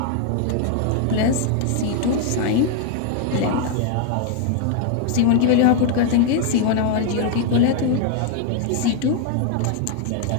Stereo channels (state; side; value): different; both; correlation 0.00